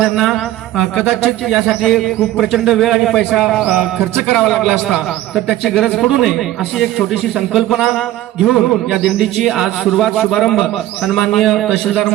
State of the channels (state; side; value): quieter; left; 14.5 dB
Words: कदाचित यासाठी खूप प्रचंड वेळ आणि पैसा खर्च करावा लागला असता, तर त्याची गरज पडू नये अशी एक छोटीशी संकल्पना घेऊन या दिंडीची आज शुभारंभ सन्माननीय तहसीलदार